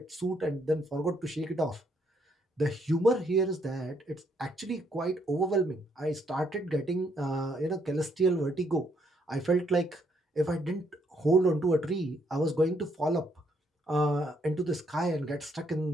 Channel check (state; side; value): normal; both; correlation 0.72